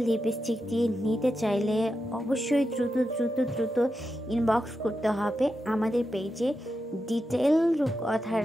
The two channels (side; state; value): both; normal; correlation 0.88